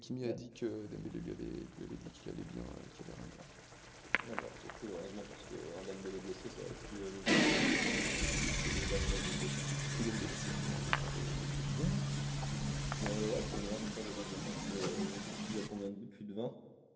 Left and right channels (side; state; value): both; identical; correlation 1.00